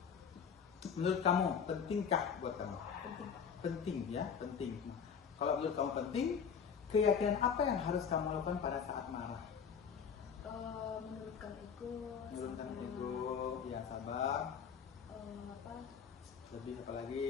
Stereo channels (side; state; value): right; quieter; 6.9 dB